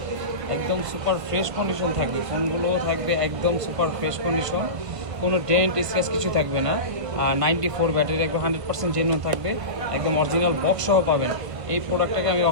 একদম সুপার ফ্রেশ কন্ডিশন থাকবে। ফোনগুলোও থাকবে একদম সুপার ফ্রেশ কন্ডিশন, কোনো ডেন্ট স্ক্র্যাচ কিছু থাকবে না। আর 94 ব্যাটারি একদম 100% জেনুইন থাকবে, একদম অরিজিনাল বক্স সহ পাবেন। এই প্রোডাক্টটাকে আমি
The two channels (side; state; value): left; late; 1.5 ms